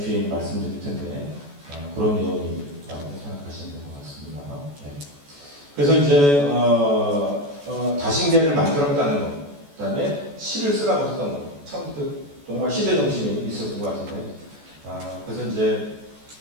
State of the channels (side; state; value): left; late; 14 ms